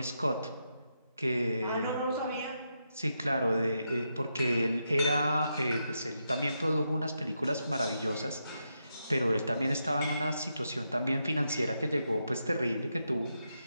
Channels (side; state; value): both; inverted; correlation -0.83